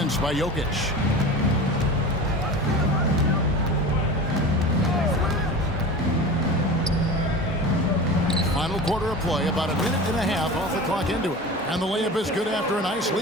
by Jokic. Final quarter of play, about a minute and a half off the clock into it. And the layup is good after a nice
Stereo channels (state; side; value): normal; both; correlation 0.33